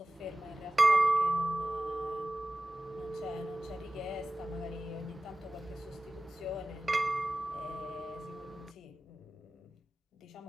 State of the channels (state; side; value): normal; both; correlation 0.96